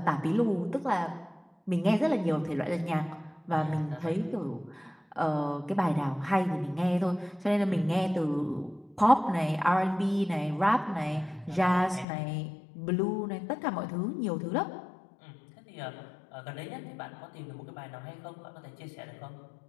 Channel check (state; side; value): drops out; right; at 12.1 s